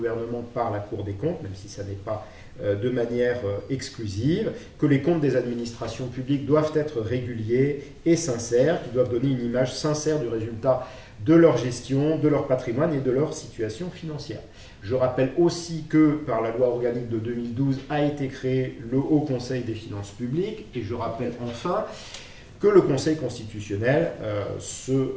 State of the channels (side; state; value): both; identical; correlation 1.00